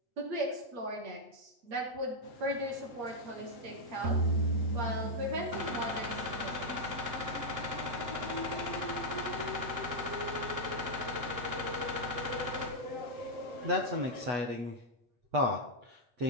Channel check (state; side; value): late; left; 7.9 ms